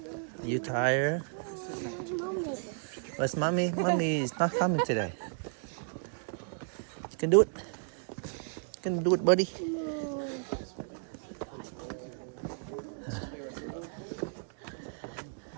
Are you tired? Where's Mommy? Where's mommy? Mommy is not coming today. You can do it. You can do it, buddy.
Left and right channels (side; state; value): left; silent; digital silence